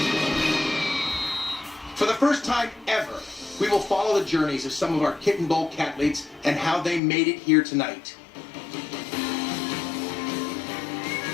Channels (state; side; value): drops out; right; at 7.0 s